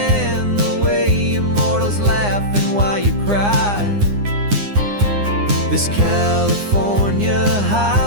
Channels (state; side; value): late; left; 9.8 ms